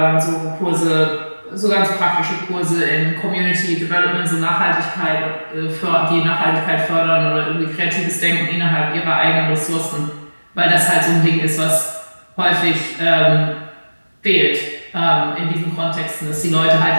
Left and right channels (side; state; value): both; inverted; correlation -1.00